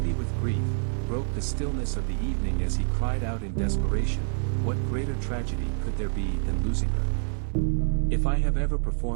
with grief, broke the stillness of the evening as he cried out in desperation, "What greater tragedy could there be than losing her? If I have ever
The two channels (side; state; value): left; silent; digital silence